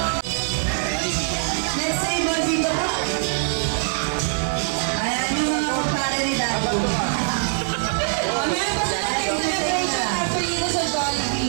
Let's say, dito po. Ayan yung mga kumpare ni Daddy. Meron pa sa celebration actually dito sa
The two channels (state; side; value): silent; left; 64 dB below the other